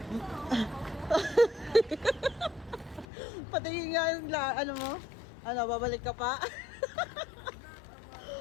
Patingin nga yung ano mo? Ano, babalik ka pa?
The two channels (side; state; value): right; drops out; at 3.1 s